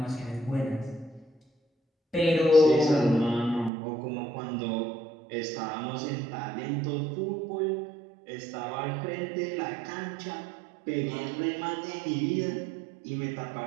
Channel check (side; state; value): left; drops out; at 3.7 s